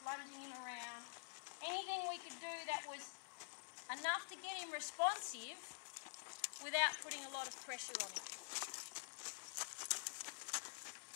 lunging him around. Anything we could do that was enough to get him responsive without putting a lot of pressure on him.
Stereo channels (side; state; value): right; silent; digital silence